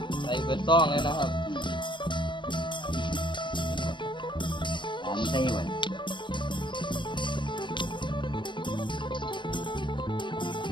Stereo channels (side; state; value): right; late; 0.23 ms